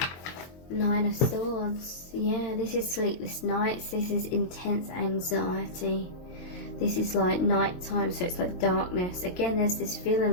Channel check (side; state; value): right; late; 23 ms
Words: Nine of Swords. Yeah, this is sleepless nights. This is intense anxiety. This is like nighttime, so it's like darkness. Again, there's this